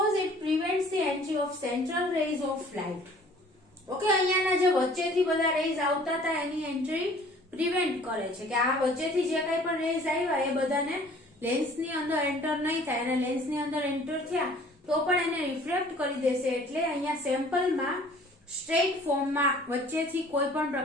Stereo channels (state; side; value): normal; both; correlation 0.52